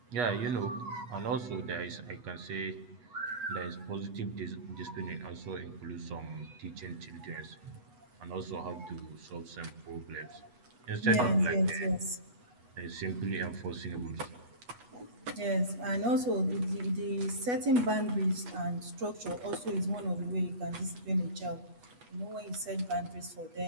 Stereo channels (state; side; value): late; left; 8.2 ms